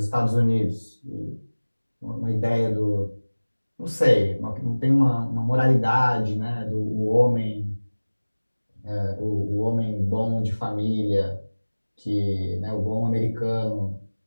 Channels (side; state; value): both; inverted; correlation -1.00